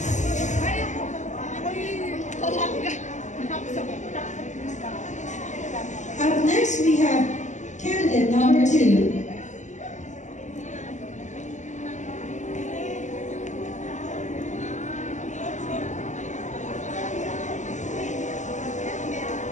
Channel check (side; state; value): right; late; 0.35 ms